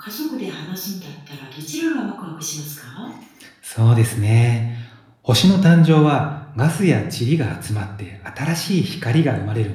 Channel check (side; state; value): both; identical; correlation 1.00